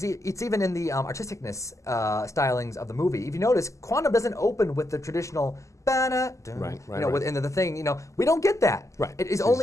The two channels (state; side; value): late; right; 0.15 ms